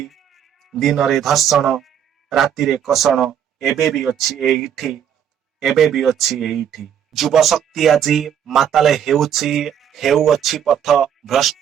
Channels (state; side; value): quieter; left; 9.0 dB